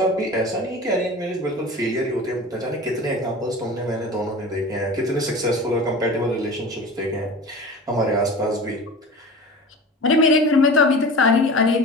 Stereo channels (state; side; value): normal; both; correlation 0.35